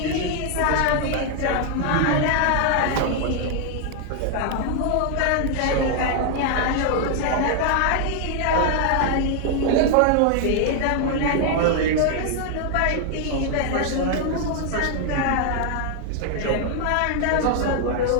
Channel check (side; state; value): both; different; correlation 0.00